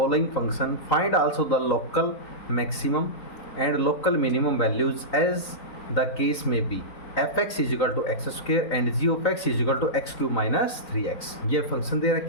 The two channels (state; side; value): late; right; 3.9 ms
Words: function, find also the local maximum and local minimum values as the case में B F x is equal to x square and G of x is equal to x cube minus 3x। ये function दे